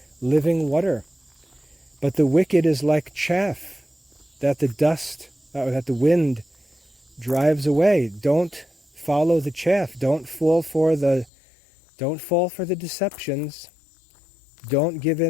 living water. But the wicked is like chaff that the wind drives away. Don't follow the chaff. Don't fall for the deceptions. Don't give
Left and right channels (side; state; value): right; drops out; at 11.3 s